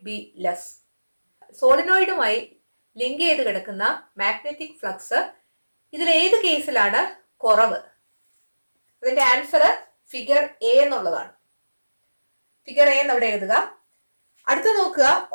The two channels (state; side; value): inverted; both; correlation -1.00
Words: be less? സോളിനോയിഡുമായി ലിങ്ക് ചെയ്ത് കിടക്കുന്ന മാഗ്നറ്റിക് ഫ്ലക്സ് ഇതിൽ ഏത് കേസിലാണ് കുറവ്? അതിന്റെ ആൻസർ ഫിഗർ എ എന്നുള്ളതാണ്. ഫിഗർ എ എന്നവിടെ എഴുതുക. അടുത്ത നോക്കുക.